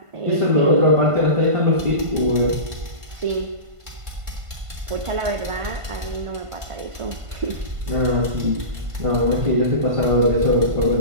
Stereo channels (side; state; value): left; late; 1.5 ms